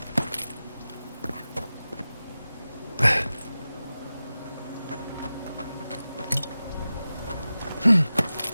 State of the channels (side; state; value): both; inverted; correlation -0.94